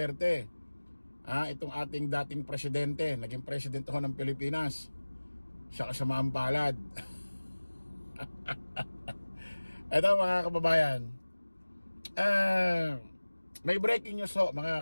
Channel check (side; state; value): both; inverted; correlation -1.00